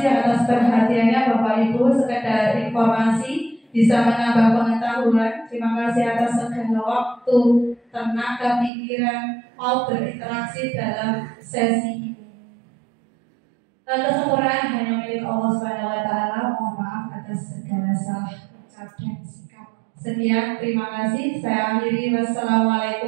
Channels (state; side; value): drops out; left; at 8.7 s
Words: atas perhatiannya Bapak Ibu, sekedar informasi bisa menambah pengetahuan. Terima kasih atas segala waktu, tenaga, pikiran mau berinteraksi dalam sesi ini. Kesempurnaan hanya milik Allah SWT. Mohon maaf atas segala salah ucap dan sikap. Sekian, terima kasih. Saya akhiri.